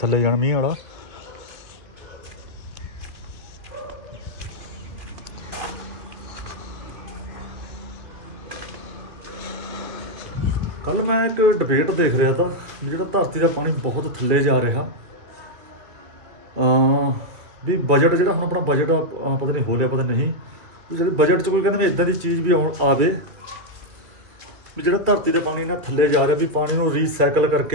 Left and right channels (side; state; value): left; late; 2.3 ms